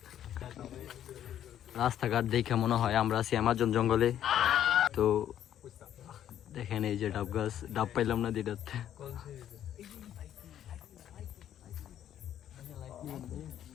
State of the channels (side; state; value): right; quieter; 10.8 dB